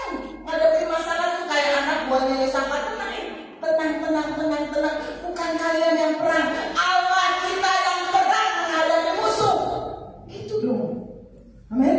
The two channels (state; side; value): identical; both; correlation 1.00